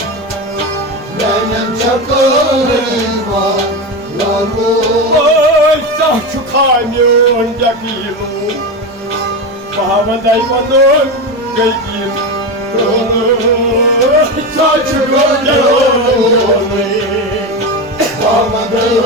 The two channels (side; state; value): both; normal; correlation 0.18